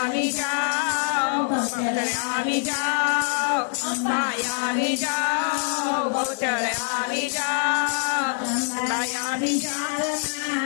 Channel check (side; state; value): right; silent; 62 dB below the other